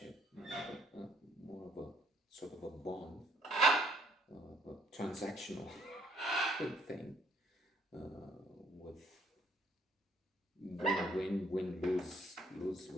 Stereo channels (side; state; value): both; normal; correlation 0.65